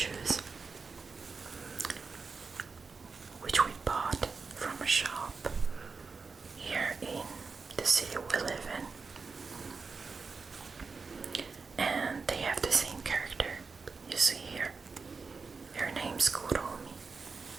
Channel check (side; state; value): left; quieter; 4.7 dB